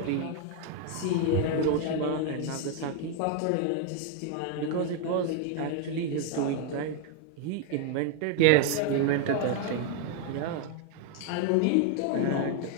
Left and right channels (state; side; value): different; both; correlation 0.01